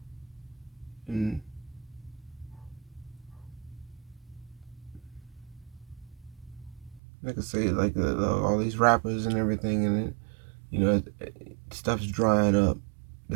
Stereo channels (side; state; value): left; drops out; at 7.0 s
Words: and like I say, like all these rappers and everything, and stuff's drying up.